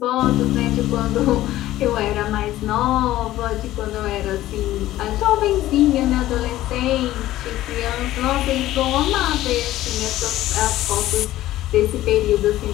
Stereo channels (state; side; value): quieter; right; 14.9 dB